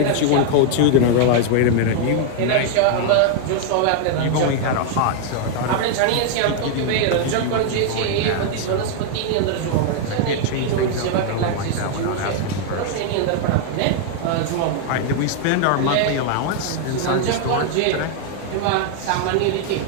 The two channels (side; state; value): both; different; correlation 0.00